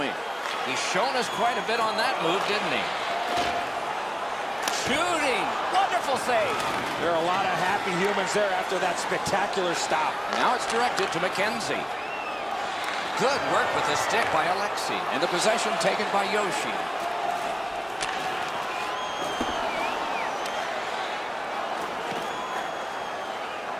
He's shown us quite a bit on that move, didn't he? Shooting! Wonderful save! There are a lot of happy humans there after that spectacular stop. Now it's directed to McKenzie. Good work with the stick by Alexi. And the possession taken by Yoshi.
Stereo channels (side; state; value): both; identical; correlation 1.00